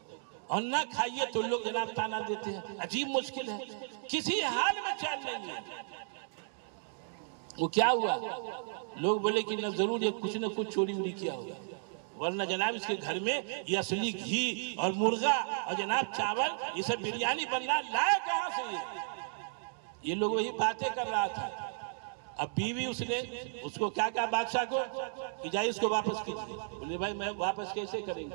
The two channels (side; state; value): left; silent; digital silence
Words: اور نہ کھائیے تو لوگ جناب تانا دیتے ہیں. عجیب مشکل ہے, کسی حال میں چین نہیں ہے. وہ کیا ہوا؟ لوگ بولے کہ نہ ضرور یہ کچھ نہ کچھ چوری ووری کیا ہوگا, ورنہ جناب اس کے گھر میں یہ اصلی گھی اور مرغا اور جناب چاول یہ سب بریانی بننا لائے کہاں سے؟ یہ لوگ وہی باتیں کر رہا تھا. اب بیوی اس نے اس کو کیا کہا بادشاہ کو کہ جائے اس کو واپس کیجیے. بولے بھائی میں واپس کیسے کریں